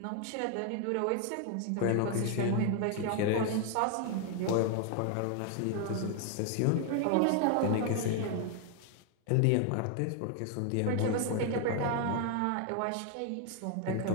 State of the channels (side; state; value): both; different; correlation 0.00